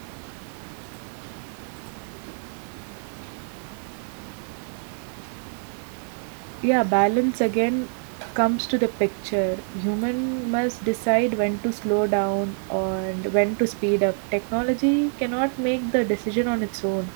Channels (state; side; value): silent; left; 61 dB below the other